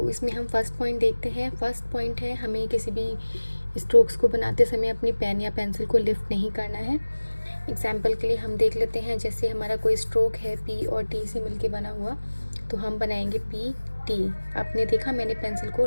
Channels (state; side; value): inverted; both; correlation -1.00